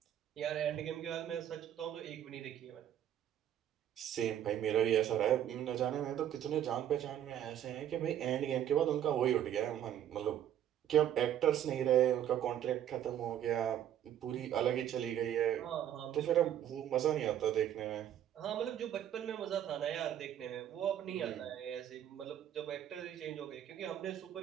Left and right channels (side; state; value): left; quieter; 10.6 dB